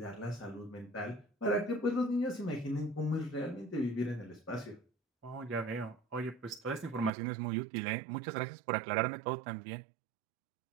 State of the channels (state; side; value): drops out; left; at 7.1 s